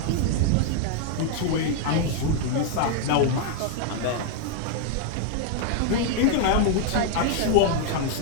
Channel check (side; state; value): both; different; correlation 0.00